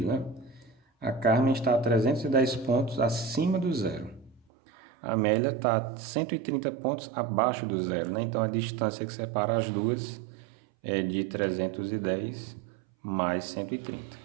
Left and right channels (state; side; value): drops out; left; at 4.4 s